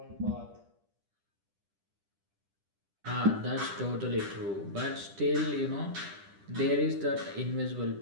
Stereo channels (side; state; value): left; late; 10 ms